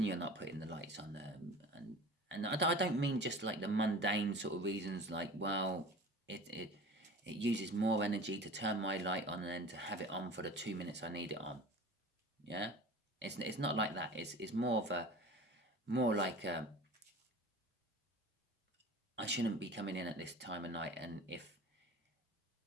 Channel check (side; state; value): both; normal; correlation 0.38